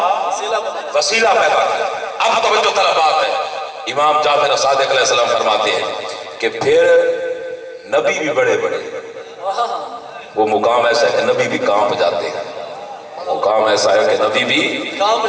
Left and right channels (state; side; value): identical; both; correlation 1.00